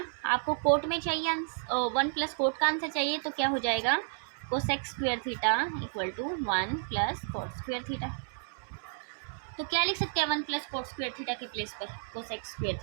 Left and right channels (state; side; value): silent; left; 57 dB below the other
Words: आपको कोट में चाहिए 1 + कोट का आंसर चाहिए, तो क्या हो जाएगा cosec square theta equal to 1 + coat square theta. तो क्या लिख सकते हैं 1 + कोट स्क्वायर थीटा के प्लेस पर कोसेक स्क्वायर